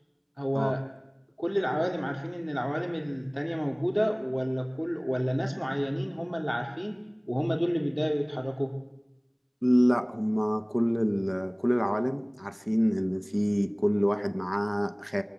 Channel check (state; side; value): identical; both; correlation 1.00